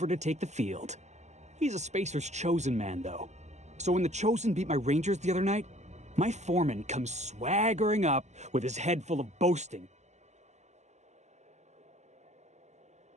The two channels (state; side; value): late; left; 0.33 ms